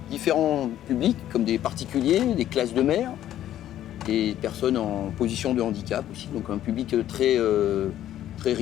différents publics, comme des particuliers, des classes de mer, des personnes en position de handicap aussi, donc un public très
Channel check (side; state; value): right; quieter; 12.1 dB